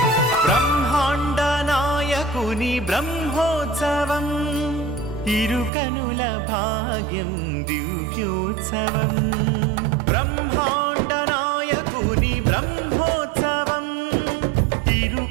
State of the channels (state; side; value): drops out; left; at 5.7 s